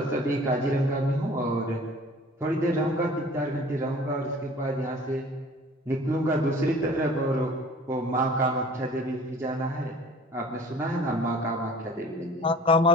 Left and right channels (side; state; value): both; normal; correlation 0.47